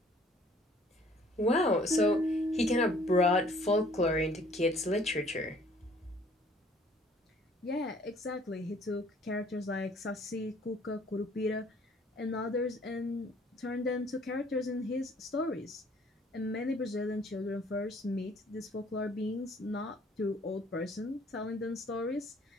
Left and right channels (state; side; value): normal; both; correlation 0.58